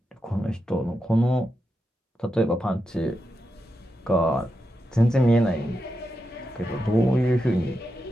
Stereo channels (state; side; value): normal; both; correlation 0.87